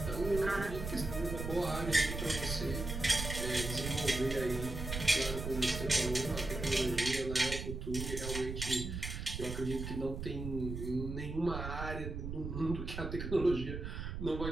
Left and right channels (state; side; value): noise; right; rumble, 5 dB below the sound